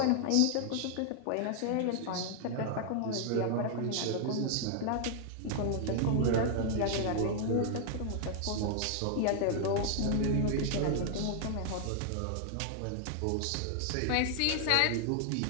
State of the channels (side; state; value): both; different; correlation 0.00